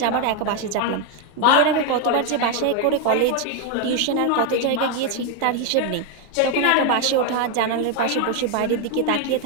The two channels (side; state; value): both; different; correlation 0.01